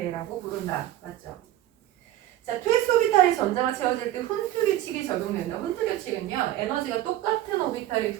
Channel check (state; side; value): quieter; left; 13.7 dB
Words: 부른다. 맞죠? 자, 2s 오비탈이 전자가 채워질 때 훈트 규칙이 적용된다. 훈트 규칙은요, 에너지가 똑같은 오비탈이